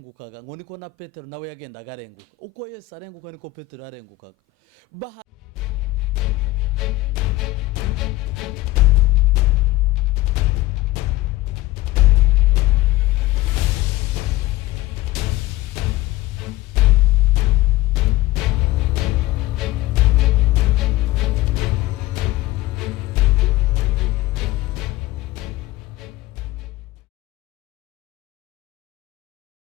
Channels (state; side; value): quieter; right; 17.5 dB